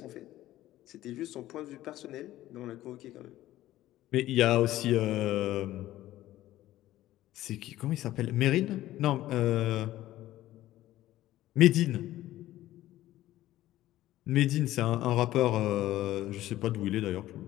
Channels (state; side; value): quieter; right; 14.8 dB